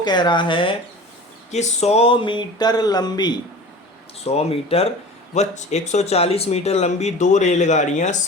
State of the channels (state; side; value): normal; both; correlation 0.38